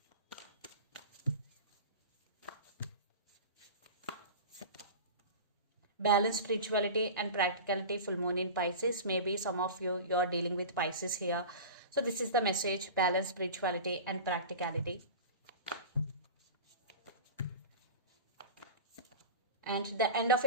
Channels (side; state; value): both; inverted; correlation -0.32